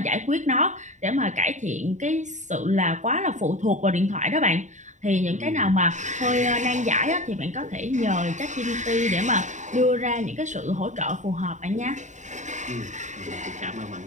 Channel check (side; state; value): left; late; 0.35 ms